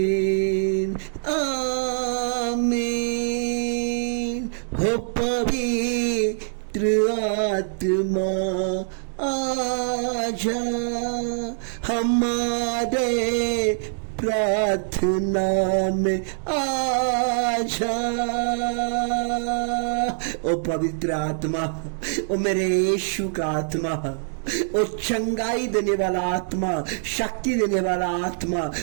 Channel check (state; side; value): silent; left; digital silence